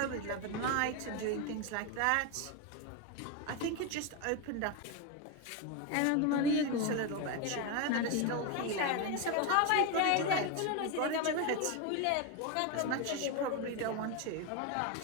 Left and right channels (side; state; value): both; different; correlation 0.02